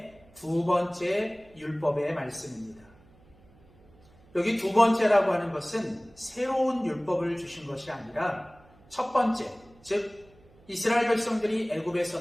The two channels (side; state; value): right; noise; hum, 28 dB below the sound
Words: 두 번째 율법의 말씀입니다. 여기 두 번째라고 하는 것은 새로운 율법을 주신 것이 아니라 첫 번째, 즉 이스라엘 백성들이 애굽에서